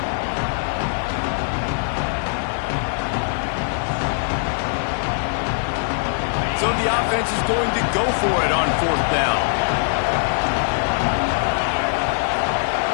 So the offense is going to go for it on fourth down.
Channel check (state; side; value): silent; right; 65 dB below the other